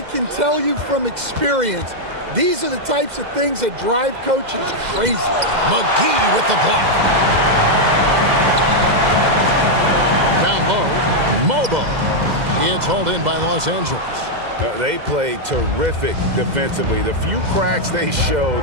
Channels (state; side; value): late; left; 2.0 ms